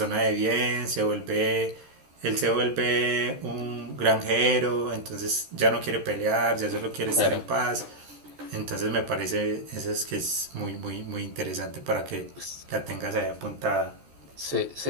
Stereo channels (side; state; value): left; late; 14 ms